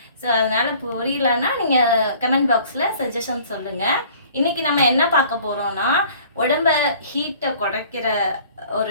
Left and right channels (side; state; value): both; inverted; correlation -0.52